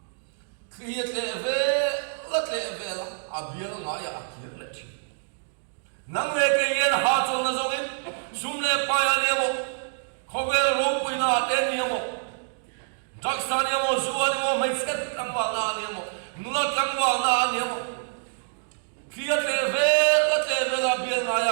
create le ve la abiel nga ya akhir le chi nang le ke yen ha chong na zong in sum le pa ya ni mo khovel ro pui na te ni mo jaksa ni mo zuwa ni mo mai sket tang wa na ni mo nula tang wa na ni mo create le ve la abiel nga ya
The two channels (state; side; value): silent; left; digital silence